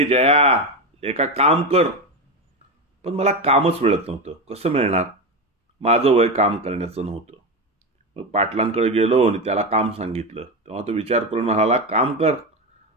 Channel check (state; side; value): normal; both; correlation 0.16